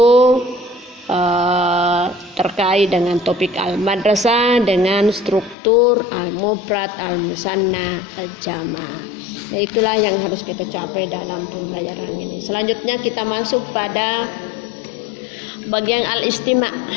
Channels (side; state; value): right; drops out; at 5.6 s